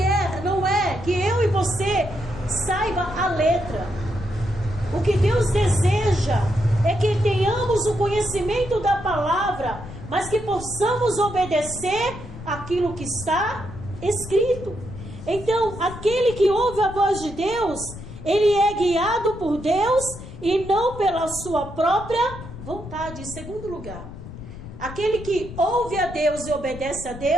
não é que eu e você saiba a letra. O que Deus deseja é que tenhamos o conhecimento da palavra, mas que possamos obedecer aquilo que está escrito. Então, aquele que ouve a voz de Deus, ele é guiado por Deus e não pela sua própria vontade. Em segundo lugar, aquele que ouve a Deus e obedece a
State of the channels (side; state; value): left; noise; rumble, 13 dB below the sound